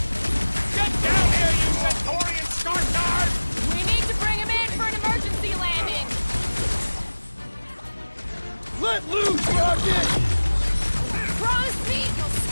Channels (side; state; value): both; inverted; correlation -1.00